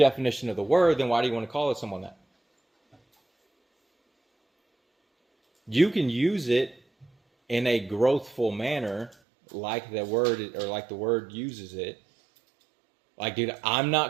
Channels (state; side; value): drops out; left; at 9.2 s